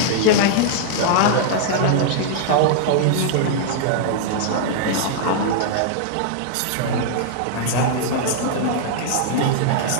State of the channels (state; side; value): different; both; correlation -0.01